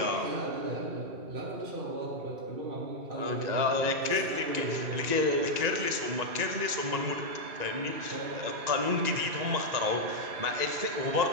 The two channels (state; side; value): late; left; 1.9 ms